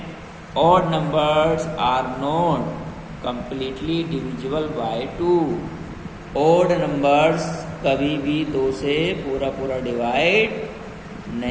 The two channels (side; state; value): both; identical; correlation 1.00